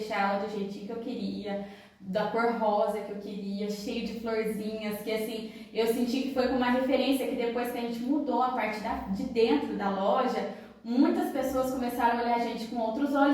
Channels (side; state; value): both; identical; correlation 1.00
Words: ela do jeitinho que eu queria, da cor rosa que eu queria, cheio de florzinhas, que assim, eu senti que foi com uma referência que depois que a gente mudou a parte de dentro da loja, muitas pessoas começaram a olhar a gente com outros